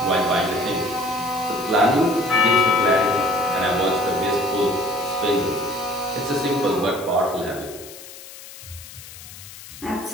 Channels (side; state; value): left; noise; hiss, 16 dB below the sound